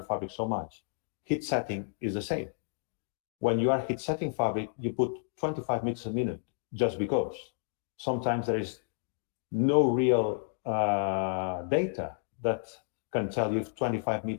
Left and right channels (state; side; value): silent; right; digital silence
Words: fabric so much. Heat setting is the same. When you are heat setting fabric, you put 25 meters a minute just because. Sometimes there is no real data that can tell you if 25